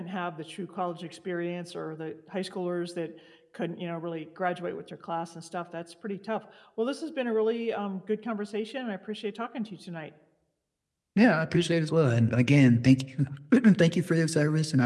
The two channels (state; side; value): identical; both; correlation 1.00